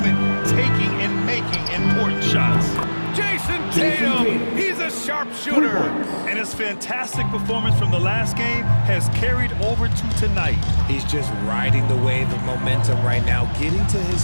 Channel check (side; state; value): both; inverted; correlation -1.00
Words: taking and making important shots. Jason Tatum, he's a sharpshooter. And his fantastic performance from the last game has carried over to tonight. He's just riding the wave of momentum right now, getting to his